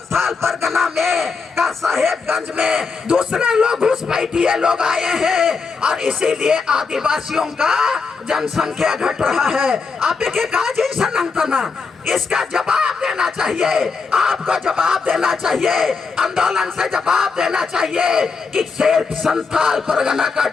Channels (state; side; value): quieter; right; 4.9 dB